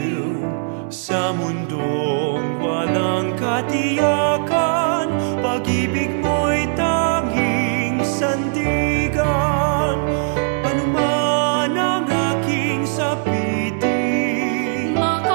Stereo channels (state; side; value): silent; left; digital silence